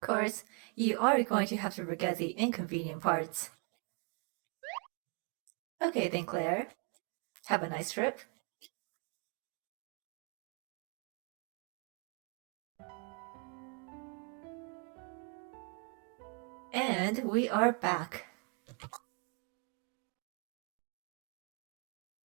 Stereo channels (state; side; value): quieter; left; 34.5 dB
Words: Of course, you are going to have to forget the inconvenient parts. Okay then, Claire. Have a nice trip. And we are back.